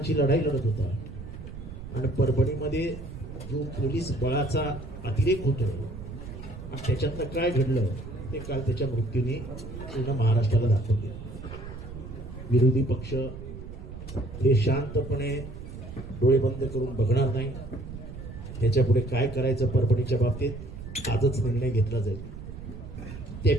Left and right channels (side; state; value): right; noise; rumble, 11 dB below the sound